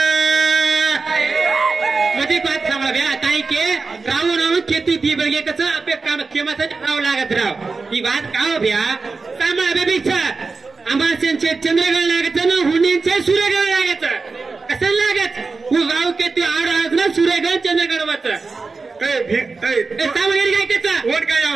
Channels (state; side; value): quieter; left; 4.2 dB